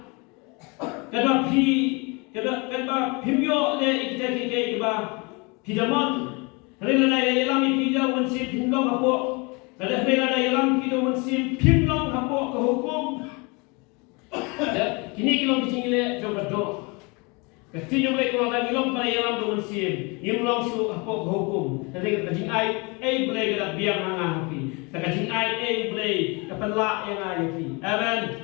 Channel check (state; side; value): quieter; right; 29.0 dB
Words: Kado pimyo le kita pidamon. Rela yalam pidau mensip pinlong hapo. Rela yalam pidau mensip pinlong hapo ke hukum. Kini kilong kicingile jom berdo. Kecil jom lek kalau lagi long pada yalam do mensip. Yimlong su hapo ke hukum. Nanti kecing ai boleh kita biar hanga hapi. Kecing ai boleh kepenlak yang api. Amen.